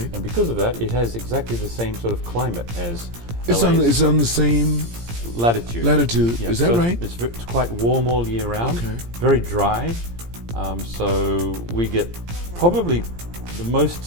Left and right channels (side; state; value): left; late; 17 ms